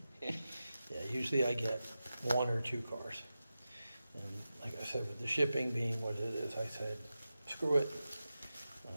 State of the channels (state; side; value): inverted; both; correlation -0.93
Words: usually I get 1 or 2 cars. And like I said, with the shipping being what it is, I said, screw it.